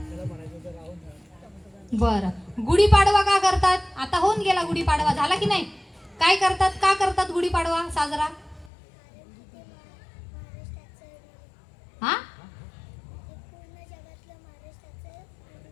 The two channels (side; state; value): right; drops out; at 8.7 s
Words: बरं, गुढीपाडवा का करतात? आता होऊन गेला गुढीपाडवा, झाला की नाही? काय करतात? का करतात गुढीपाडवा साजरा? हा,